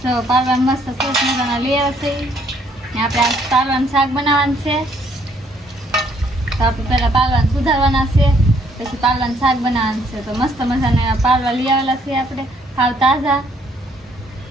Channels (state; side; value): normal; both; correlation 0.66